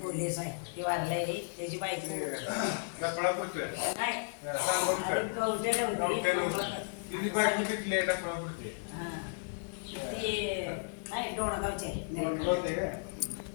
पोलीस आहे, ती वारलाय त्याची बायको नाही डोणगावची आहे.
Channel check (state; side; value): silent; right; 55 dB below the other